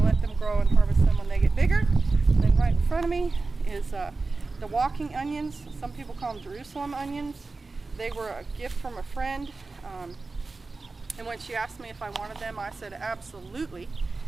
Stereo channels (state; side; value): quieter; left; 3.7 dB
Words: let them grow and harvest them when they get bigger. And then right in front of me is the walking onions. Some people call them Jerusalem onions. They were a gift from a friend. And when she asked me if I wanted them, I said absolutely.